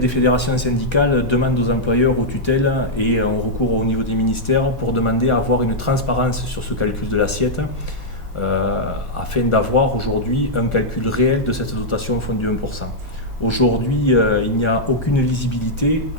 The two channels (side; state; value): both; normal; correlation -0.07